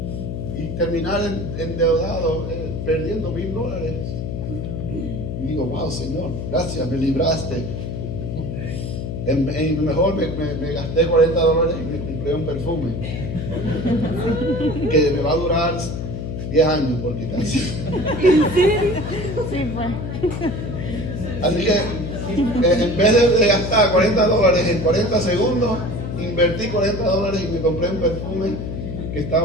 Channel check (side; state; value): left; noise; hum, 5 dB below the sound